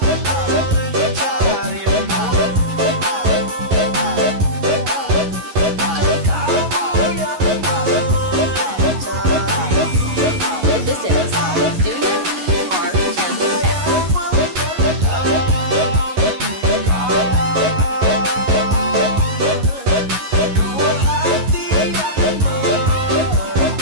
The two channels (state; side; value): late; left; 11 ms